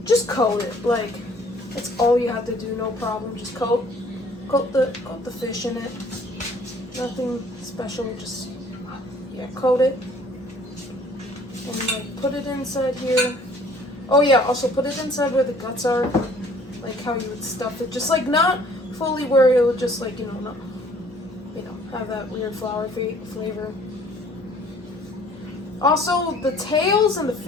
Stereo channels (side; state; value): both; normal; correlation 0.56